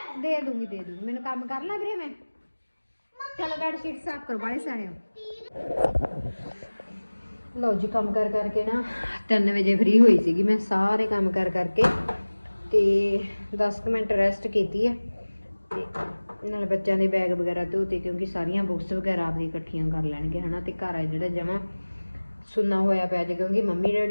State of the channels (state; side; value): inverted; both; correlation -1.00